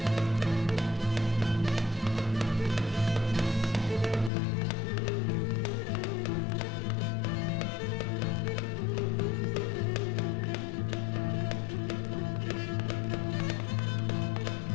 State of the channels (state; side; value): drops out; right; at 4.3 s